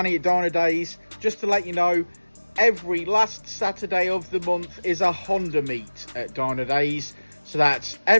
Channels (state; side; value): inverted; both; correlation -1.00